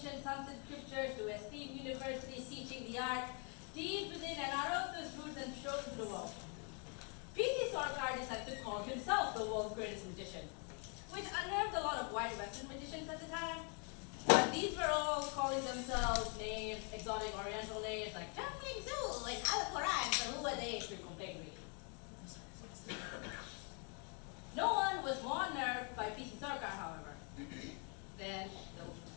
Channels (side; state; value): right; quieter; 37.8 dB